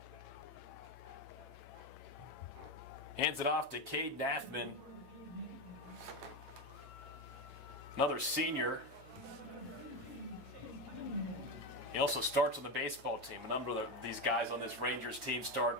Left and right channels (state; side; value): late; left; 8.8 ms